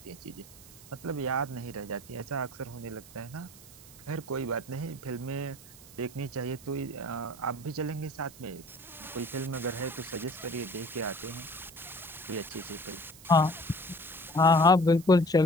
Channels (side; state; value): right; noise; hiss, 20 dB below the sound